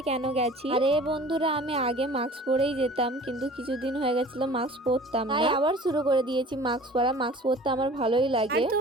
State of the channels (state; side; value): normal; both; correlation 0.45